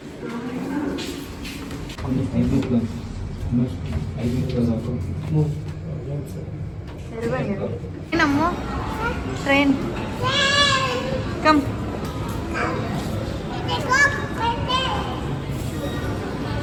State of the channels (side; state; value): both; identical; correlation 1.00